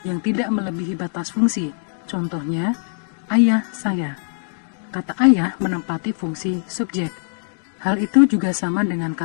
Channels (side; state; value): right; silent; digital silence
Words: yang tidak melebihi batas fungsi. Contohnya, ayah saya. Kata ayah menempati fungsi subjek. Hal itu juga sama dengan